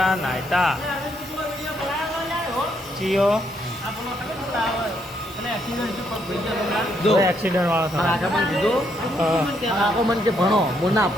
નાયતા ચિયો એક્સિડન્ટ વાળો આખો મન કે ભણો હું ના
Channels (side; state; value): both; normal; correlation 0.74